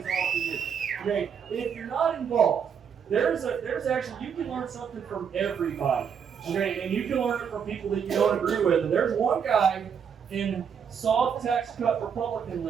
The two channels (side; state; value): left; quieter; 7.3 dB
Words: off to you. Okay, if you're not involved, there's actually, you can learn something from everybody. Okay, and you can learn it from people that you don't agree with. And there's one guy in soft tax cut Republican